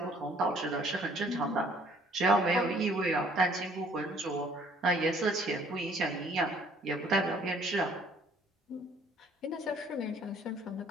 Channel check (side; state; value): both; normal; correlation 0.59